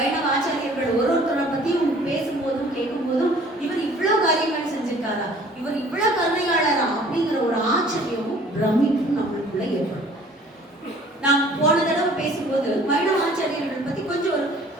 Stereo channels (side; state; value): both; normal; correlation 0.52